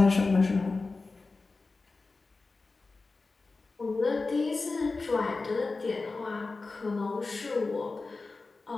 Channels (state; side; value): quieter; right; 3.8 dB